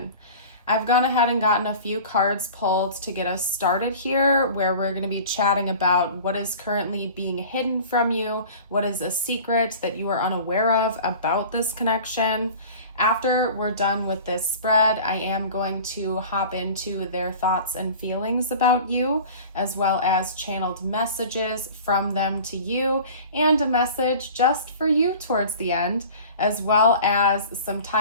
I've gone ahead and gotten a few cards pulled to get us started here, where we're going to be chatting about what is currently being hidden from you, what is a secret that you are unaware of about this connection. After we're done with this spread, I am going to hop into their thoughts and feelings about you, as well as channeled messages from them to you, and a message just for you towards the end, as well as some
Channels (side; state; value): both; inverted; correlation -0.41